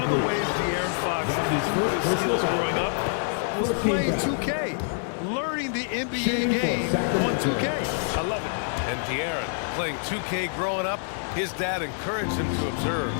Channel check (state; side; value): silent; right; 61 dB below the other